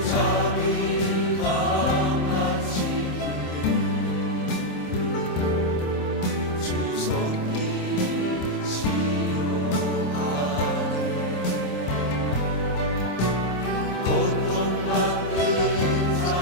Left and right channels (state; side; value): late; right; 27 ms